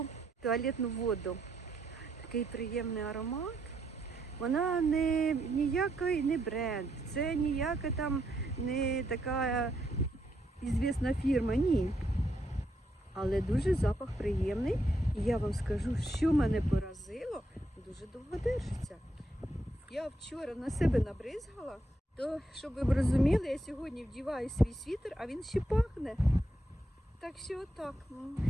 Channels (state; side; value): normal; both; correlation 0.78